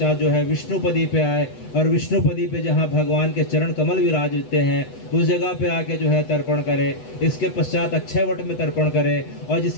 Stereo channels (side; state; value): right; late; 8.1 ms